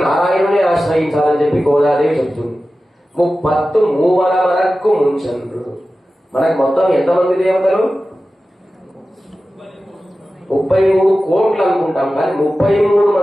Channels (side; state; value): both; normal; correlation 0.95